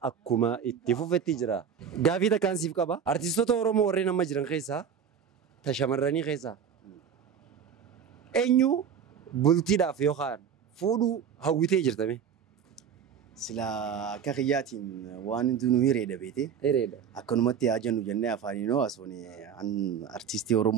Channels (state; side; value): quieter; left; 7.6 dB